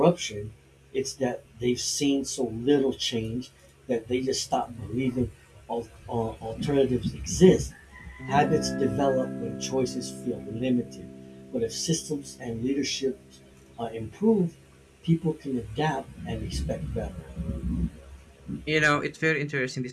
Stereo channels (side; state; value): both; identical; correlation 1.00